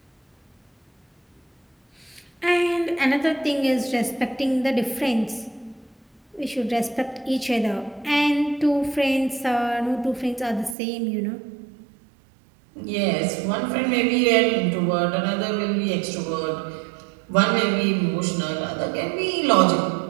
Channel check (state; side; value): drops out; left; at 10.8 s